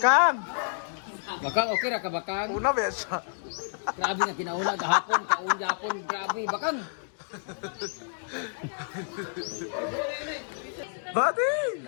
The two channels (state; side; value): silent; right; digital silence